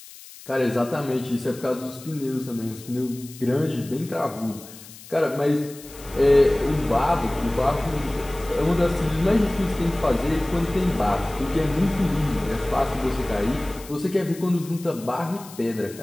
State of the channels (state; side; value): noise; left; hiss, 18 dB below the sound